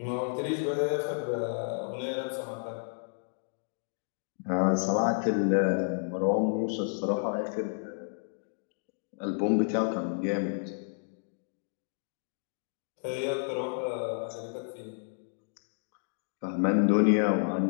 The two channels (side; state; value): right; silent; digital silence